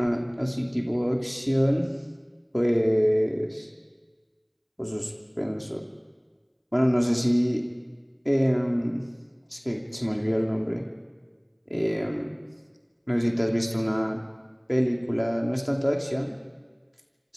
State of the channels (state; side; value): identical; both; correlation 1.00